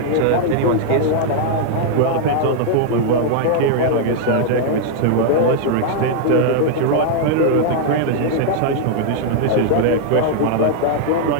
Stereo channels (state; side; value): different; both; correlation -0.01